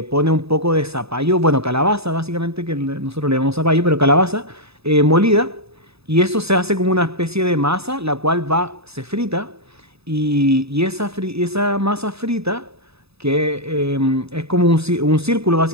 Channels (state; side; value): late; left; 0.79 ms